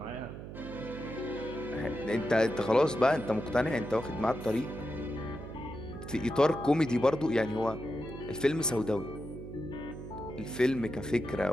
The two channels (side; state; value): right; noise; hum, 10 dB below the sound